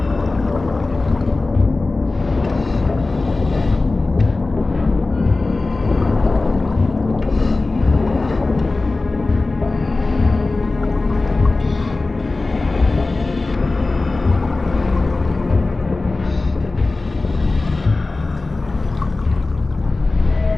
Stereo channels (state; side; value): quieter; right; 3.3 dB